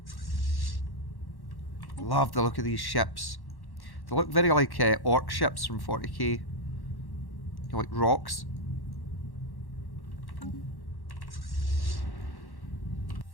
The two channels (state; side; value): late; right; 1.1 ms